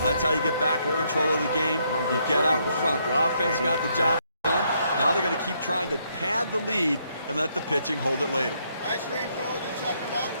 that's how you get back in control of the game. You get out in front. The offense got the job done. Now they're going to keep trying to pad the lead and let the pitching hold it later. Ice cream cold, you check them out.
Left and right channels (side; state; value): both; inverted; correlation -0.73